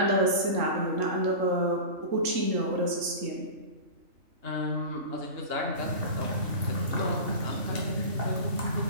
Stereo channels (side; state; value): left; late; 3.6 ms